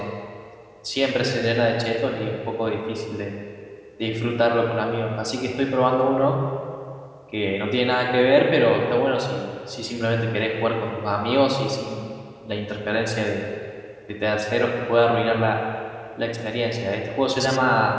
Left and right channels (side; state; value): both; identical; correlation 1.00